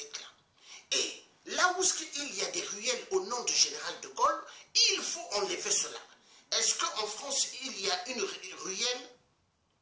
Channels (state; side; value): identical; both; correlation 1.00